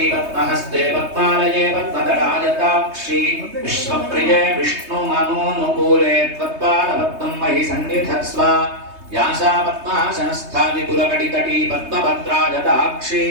పద్మహస్తే పద్మాలయే పద్మదళాయతాక్షి విశ్వప్రియే విష్ణుమనోనుకూలే త్వత్పాదపద్మం మహి సన్నిధత్స్వ. వ్యాసా పద్మాసనస్థా విపులకటితటీ పద్మభద్రాయతాక్షి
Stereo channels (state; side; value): late; left; 3.2 ms